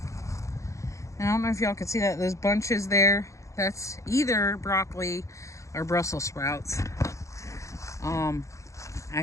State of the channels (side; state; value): right; late; 0.15 ms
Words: And I don't know if y'all can see that, those bunches there, that's either broccoli or Brussels sprouts.